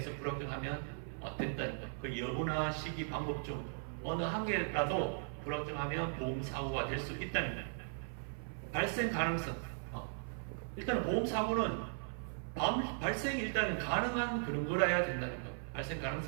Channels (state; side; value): silent; left; 52 dB below the other